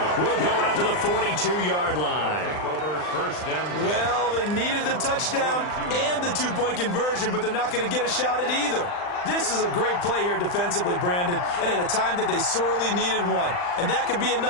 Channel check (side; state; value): right; late; 39 ms